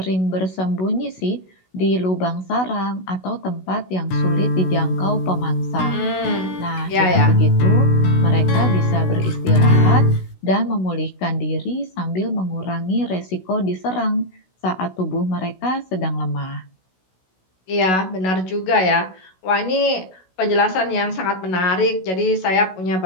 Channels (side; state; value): right; late; 16 ms